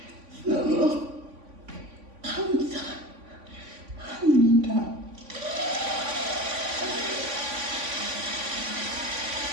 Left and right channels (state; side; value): late; left; 3.5 ms